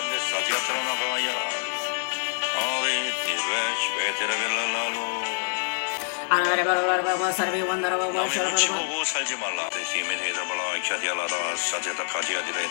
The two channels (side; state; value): right; silent; digital silence